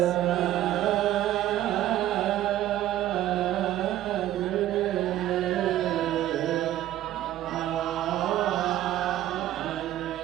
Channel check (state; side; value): quieter; left; 13.3 dB